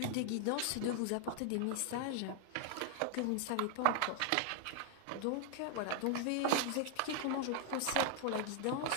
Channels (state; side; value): different; both; correlation 0.00